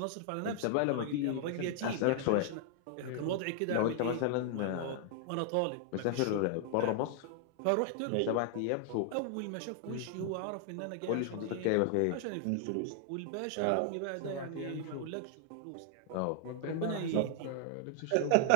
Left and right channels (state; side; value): different; both; correlation 0.00